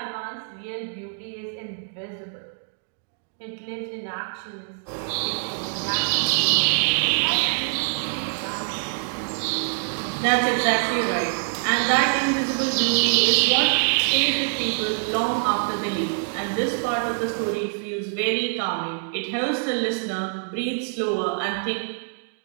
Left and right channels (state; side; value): silent; left; digital silence